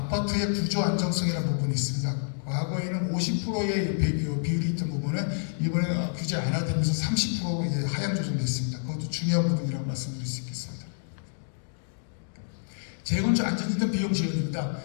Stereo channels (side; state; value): right; silent; digital silence